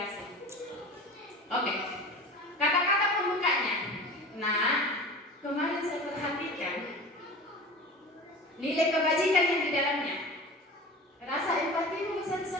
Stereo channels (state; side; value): normal; both; correlation 0.36